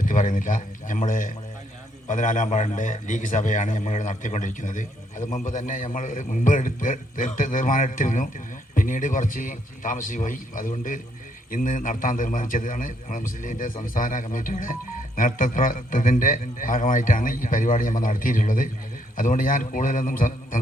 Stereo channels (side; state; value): both; normal; correlation 0.72